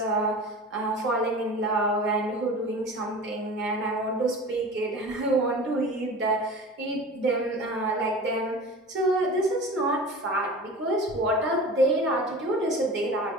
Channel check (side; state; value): both; normal; correlation 0.36